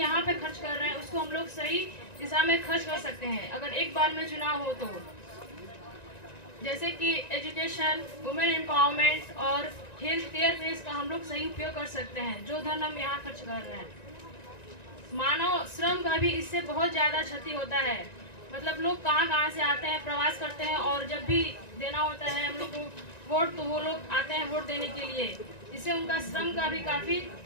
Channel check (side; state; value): right; late; 1.9 ms